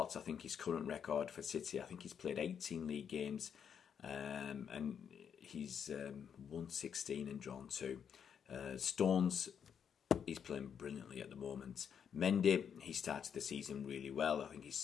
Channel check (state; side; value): quieter; right; 7.7 dB